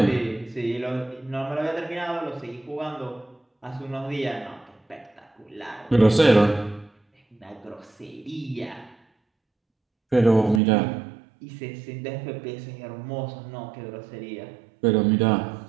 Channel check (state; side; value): drops out; left; at 10.6 s